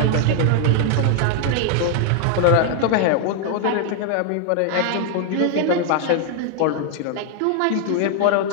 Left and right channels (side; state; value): both; different; correlation 0.00